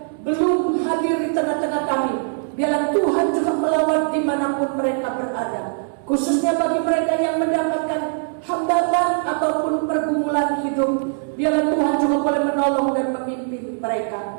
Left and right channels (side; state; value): left; silent; digital silence